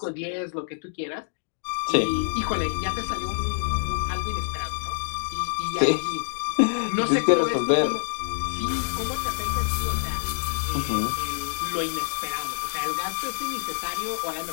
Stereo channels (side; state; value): right; silent; digital silence